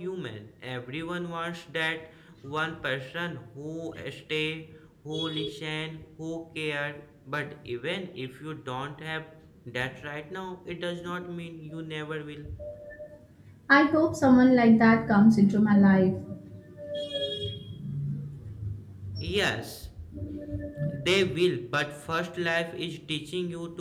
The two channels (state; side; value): identical; both; correlation 1.00